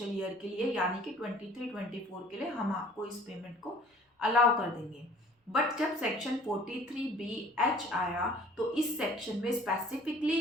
ईयर के लिए, यानी कि 23-24 के लिए हम आपको इस पेमेंट को अलाउ कर देंगे। बट जब सेक्शन 43BH आया तो इस सेक्शन में स्पेसिफिकली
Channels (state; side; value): normal; both; correlation 0.51